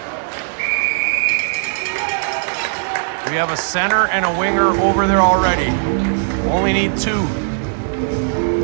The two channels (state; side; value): silent; left; 61 dB below the other